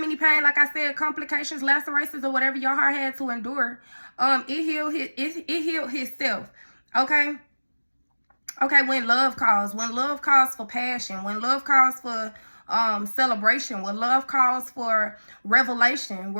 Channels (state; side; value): inverted; both; correlation -1.00